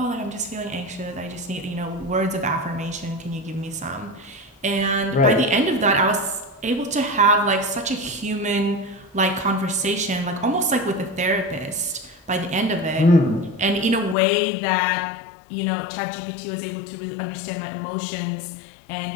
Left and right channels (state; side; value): drops out; right; at 14.2 s